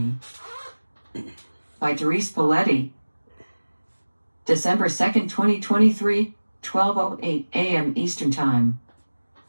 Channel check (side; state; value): both; inverted; correlation -1.00